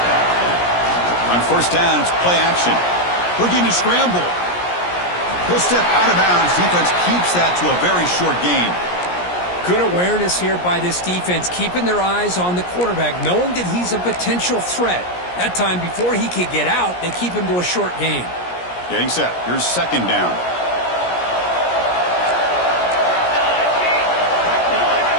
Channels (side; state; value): right; late; 17 ms